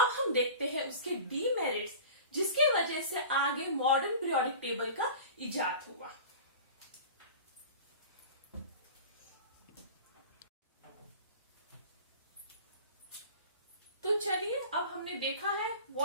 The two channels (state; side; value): inverted; both; correlation -0.38